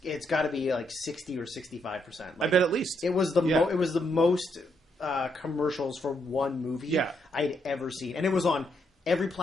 got to be like 60 or 65%. I bet at least it was the most commercials for one movie I'd ever seen, and it was on every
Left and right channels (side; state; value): both; normal; correlation 0.77